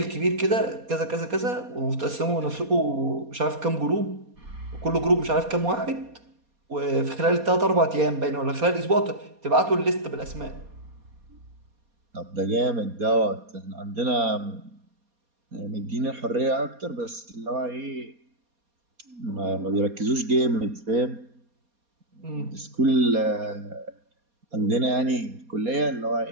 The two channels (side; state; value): left; late; 4.2 ms